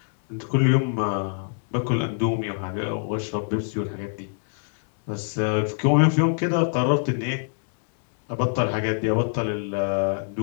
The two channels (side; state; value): right; silent; digital silence